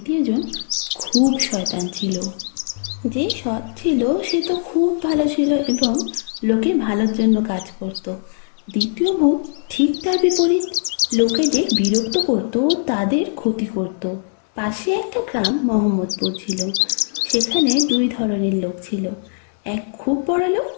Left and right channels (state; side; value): silent; right; 65 dB below the other